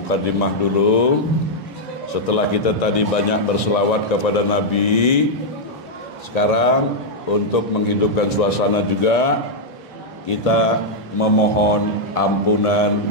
dulu. Setelah kita tadi banyak berselawat kepada Nabi, sekarang untuk menghidupkan suasana juga kita memohon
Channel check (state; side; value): normal; both; correlation -0.04